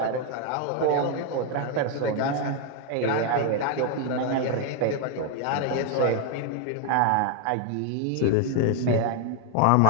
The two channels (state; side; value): different; both; correlation 0.01